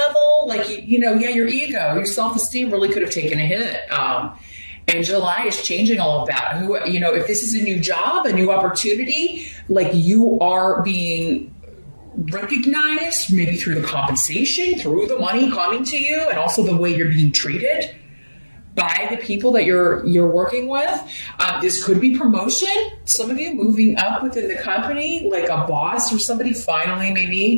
Like, your ego, your self-esteem really could have taken a hit. And July is changing all of that. If this is a new job, a new opportunity, like, you are being recognized, maybe through the compensation, through the money coming to you, and also the way you're being treated by the people that you're working with. This could be promotion. Some of you moving up within the company, like a boss or somebody finally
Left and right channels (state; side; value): inverted; both; correlation -1.00